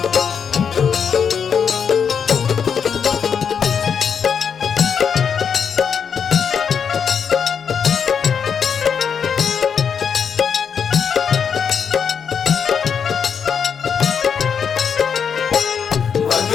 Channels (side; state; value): right; quieter; 7.0 dB